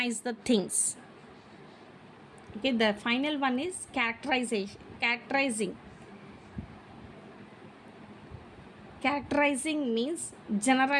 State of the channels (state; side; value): identical; both; correlation 1.00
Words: the things. Okay, the final one is characterizing. Characterizing means